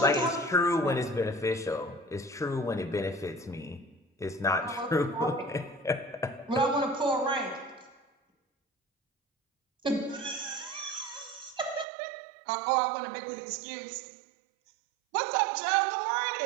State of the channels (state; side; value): drops out; left; at 11.9 s